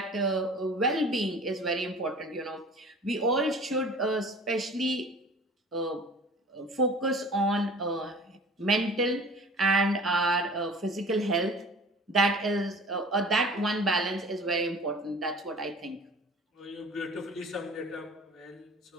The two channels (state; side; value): normal; both; correlation 0.43